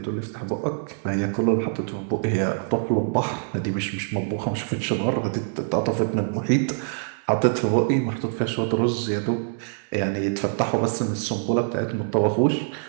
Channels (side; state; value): left; silent; digital silence